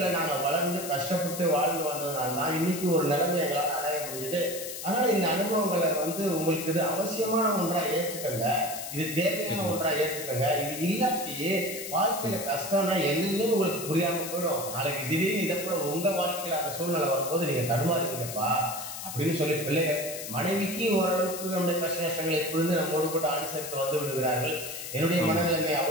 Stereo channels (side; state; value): left; noise; hiss, 8 dB below the sound